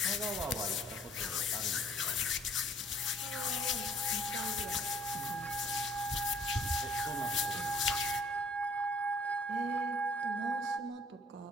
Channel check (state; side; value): normal; both; correlation 0.58